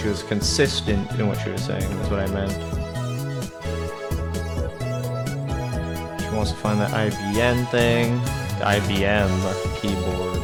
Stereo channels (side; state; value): both; identical; correlation 1.00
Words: was consistent in what she was saying, is what I meant. She wants to find that IBM thing. The IBM keyboard.